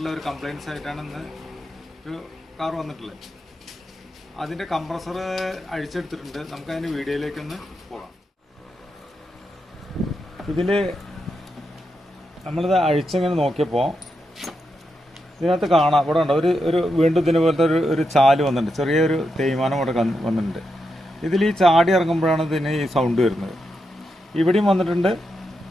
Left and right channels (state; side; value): normal; both; correlation 0.85